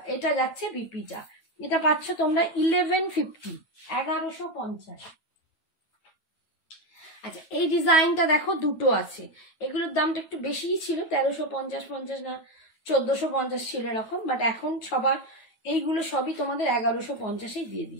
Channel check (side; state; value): right; late; 9.2 ms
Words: এটা যাচ্ছে বিপিটা, এটা পাচ্ছ তোমরা 1150, 1150। আচ্ছা এই ডিজাইনটা দেখো, দুটো আছে, এগুলোর দামটা একটু বেশিই ছিল, 1350 না 1450 ছিল এরকম, বাট এখন সবার এইগুলো সবই তোমাদের 1150-এ দিয়ে